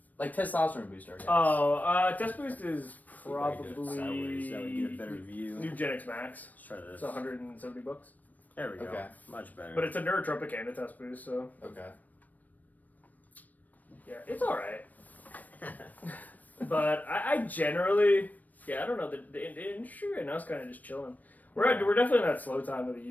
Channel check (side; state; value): right; late; 0.080 ms